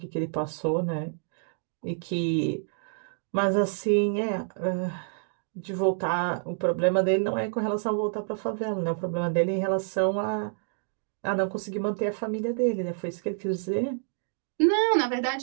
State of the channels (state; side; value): silent; left; digital silence